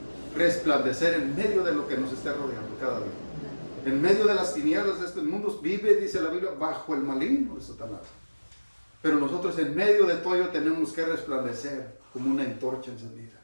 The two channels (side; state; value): both; inverted; correlation -1.00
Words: resplandecer en medio de lo que nos esté rodeando cada día. En medio de las tinieblas de este mundo vive, dice la Biblia, bajo el maligno de Satanás. Pero nosotros en medio de todo ello tenemos que resplandecer como una antorcha encendida.